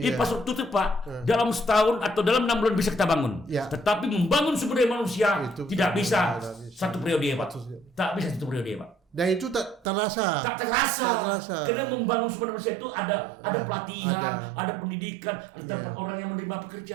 itu Pak, dalam setahun atau dalam 6 bulan bisa kita bangun. Tetapi membangun sumber daya manusia itu tidak bisa satu periode, Pak. Tak bisa satu periode, Pak. Dan itu tak terasa. Karena membangun sumber daya manusia itu ada pelatihan, ada pendidikan, ada tempat orang yang menerima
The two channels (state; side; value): drops out; left; at 9.8 s